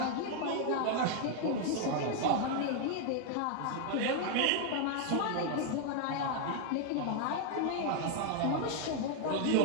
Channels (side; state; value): both; different; correlation 0.00